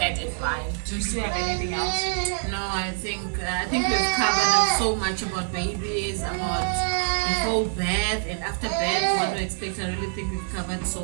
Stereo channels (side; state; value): left; silent; digital silence